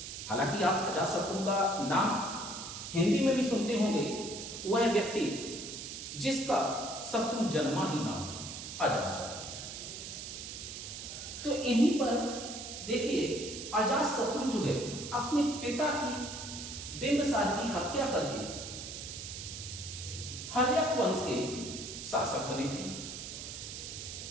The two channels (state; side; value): noise; right; hiss, 8 dB below the sound